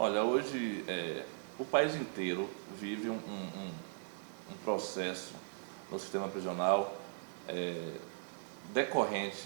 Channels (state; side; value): silent; left; digital silence